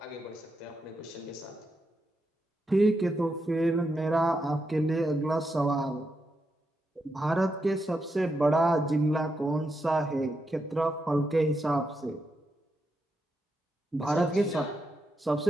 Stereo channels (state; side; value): normal; both; correlation 0.84